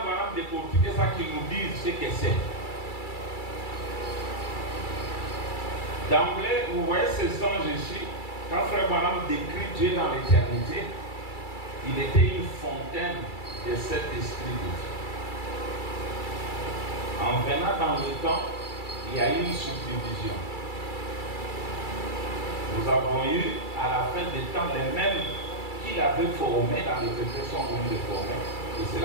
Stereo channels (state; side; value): late; right; 2.3 ms